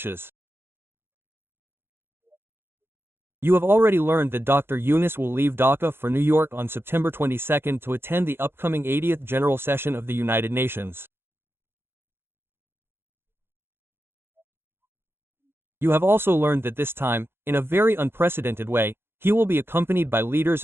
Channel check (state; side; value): late; left; 0.11 ms